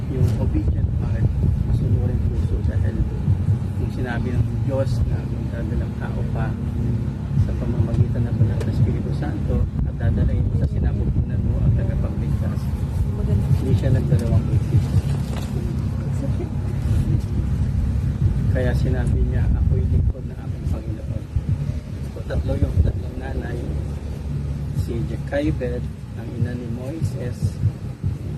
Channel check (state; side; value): identical; both; correlation 1.00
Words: yung obedient heart, masunurin puso sa hello. Yung sinabi ng Diyos na magdadalang tao pa sa pamamagitan ng Banal na Espiritu Santo at dadalahin mo sa sinapupunan mo ang tagapagligtas. Hindi siya nagdalawang isip. Kaya sinabi niya, ako'y lingkod na aking Panginoon. So tatlong nanay, si Jochebed, ang ina ni Moises